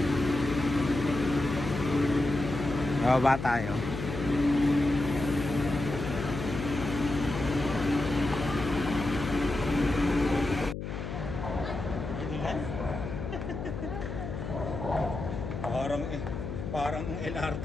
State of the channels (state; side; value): noise; left; hum, 6 dB below the sound